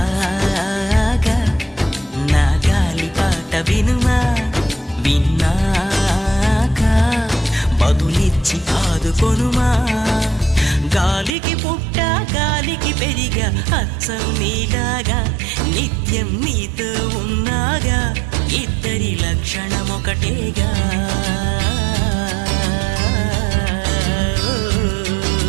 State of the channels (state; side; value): drops out; left; at 11.4 s